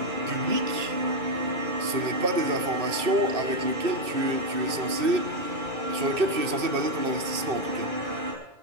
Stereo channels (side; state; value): left; late; 2.6 ms